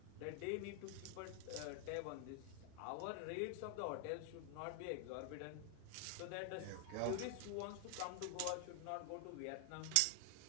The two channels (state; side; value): different; both; correlation 0.00